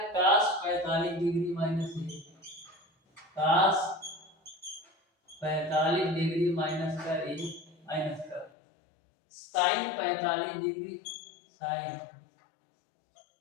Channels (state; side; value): drops out; right; at 8.5 s